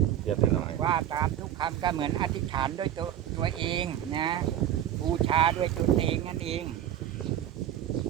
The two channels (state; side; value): quieter; left; 11.0 dB